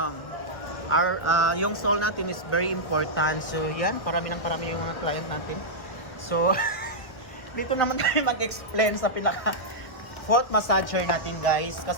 yung sole natin is very important. So, yan, parami yung mga client natin. So, dito naman tayo mag-explain sa pinaka-foot massager natin, guys.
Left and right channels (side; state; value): right; late; 1.1 ms